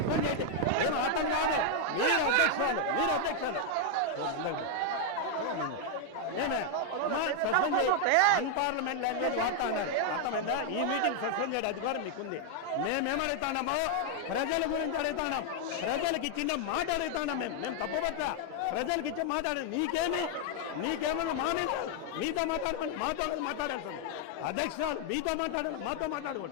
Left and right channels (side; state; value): both; different; correlation 0.00